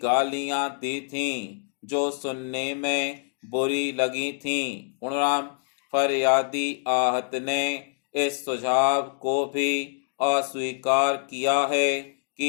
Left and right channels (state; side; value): silent; right; 61 dB below the other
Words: गालियां दी थीं जो सुनने में बुरी लगी थीं। पूर्णराम। फरियादी आहत ने इस सुझाव को भी अस्वीकार किया है